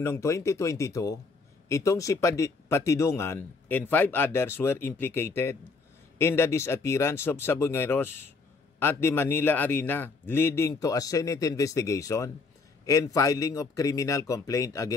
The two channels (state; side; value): quieter; right; 4.2 dB